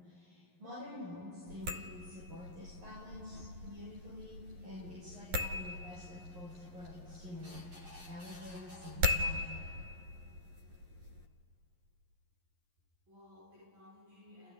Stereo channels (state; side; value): late; left; 11 ms